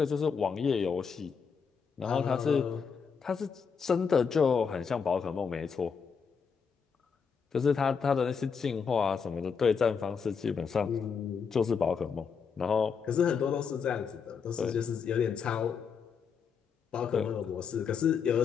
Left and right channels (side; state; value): right; quieter; 6.2 dB